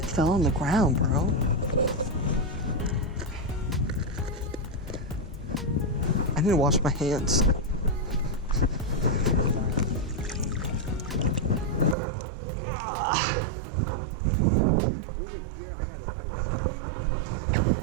fell on the ground, bro. I need to wash my hands. Over here, I got an ice.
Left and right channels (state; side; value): drops out; left; at 12.0 s